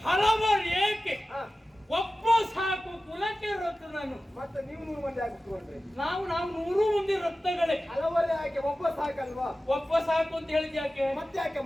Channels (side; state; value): both; normal; correlation 0.95